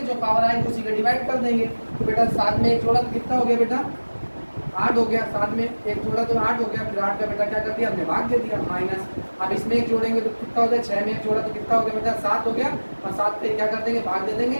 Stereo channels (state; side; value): inverted; both; correlation -1.00